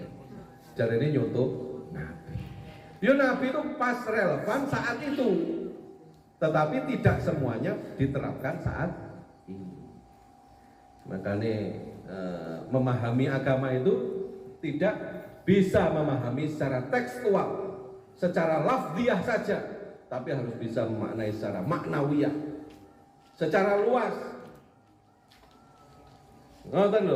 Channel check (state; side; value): identical; both; correlation 1.00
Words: Jarene nyontoh Nabi. Ya Nabi itu pas relevan saat itu. Tetapi tidak semuanya diterapkan saat ini. Makanya memahami agama itu tidak bisa memahami secara tekstual, secara lafziah saja, tapi harus bisa memaknai secara maknawiyah, secara luas. Ngoten